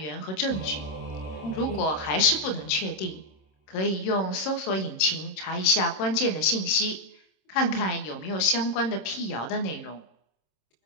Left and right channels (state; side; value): late; right; 26 ms